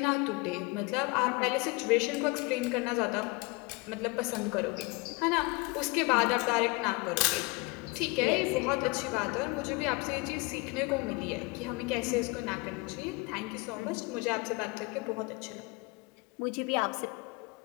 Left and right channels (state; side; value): quieter; right; 26.4 dB